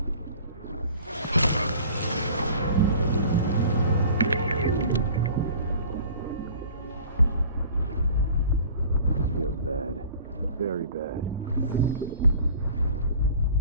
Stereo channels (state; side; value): inverted; both; correlation -0.46